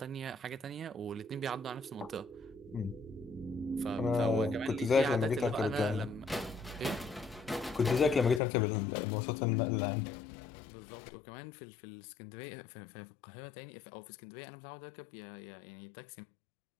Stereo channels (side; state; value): right; drops out; at 8.4 s